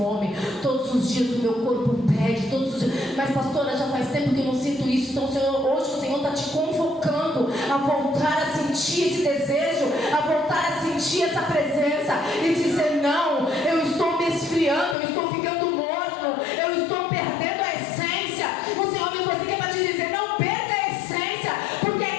Todos os dias o meu corpo pede. Todos os dias. Mas pastora, já faz tempo que eu não sinto isso. Então hoje o Senhor está te convocando a voltar a sentir esse desejo, a voltar a sentir essa presença e dizer: não, eu estou me esfriando, eu estou ficando morno, eu estou perdendo a essência. O Senhor me trouxe aqui para te dizer: não perca a essência. Porque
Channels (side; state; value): right; drops out; at 15.0 s